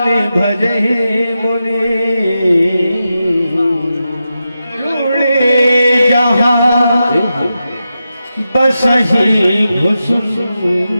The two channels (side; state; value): both; inverted; correlation -0.90